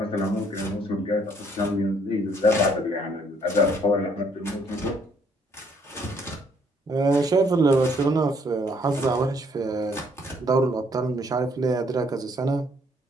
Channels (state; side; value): normal; both; correlation 0.66